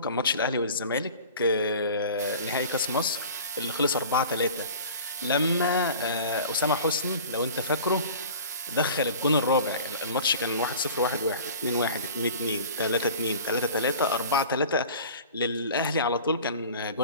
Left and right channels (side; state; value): both; inverted; correlation -0.41